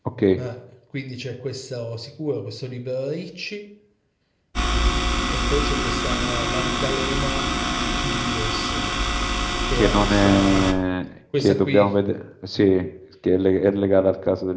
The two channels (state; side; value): identical; both; correlation 1.00